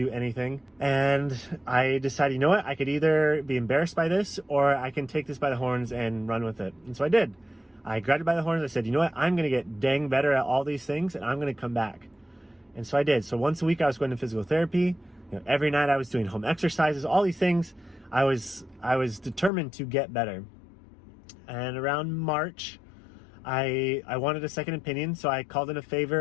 anything. And I decided, you know what? I could either be embarrassed by this, or I can take this by the horns and run with it. And so I did. I grabbed it by the horns. I said, you know what? I'm going to get dang better at all these things, and I'm going to come back. And so I did. So once a week, I was going to physical therapy. Every night, I was doing home exercises, all these things. I was determined to get better. And around March, I wanted a second opinion, so I called in a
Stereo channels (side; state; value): right; drops out; at 19.5 s